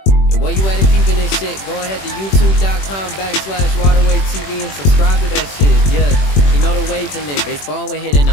And while you at it peeping this shit, go ahead to youtube.com/waterway TV and subscribe to that shit. Yeah, you know the waves in it. Baseball when hitting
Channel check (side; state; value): right; late; 21 ms